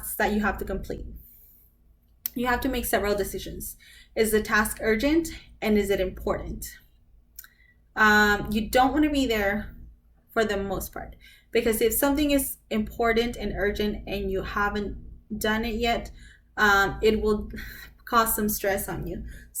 that you have to complete. You have to make several decisions. Is the task urgent and is it important? You don't want to be there for the most part, because if something is important and urgent and you haven't done it yet, it will cause some stress on you.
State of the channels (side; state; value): both; identical; correlation 1.00